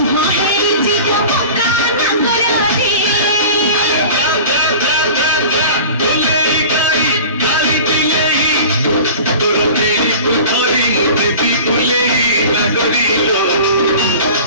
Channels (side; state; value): both; inverted; correlation -0.39